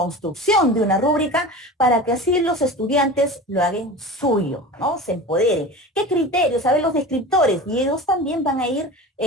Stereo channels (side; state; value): both; normal; correlation 0.33